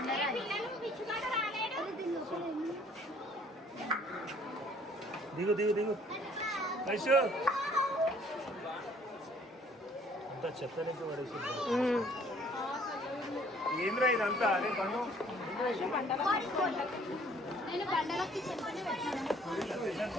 దిగు దిగు దిగు వైషు అంతా చెత్తలేక పడేసి ఏంద్రా ఇదంతా అదే పన్ను నేను బండలకి చెప్పని పెట్టాను.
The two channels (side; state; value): both; normal; correlation 0.58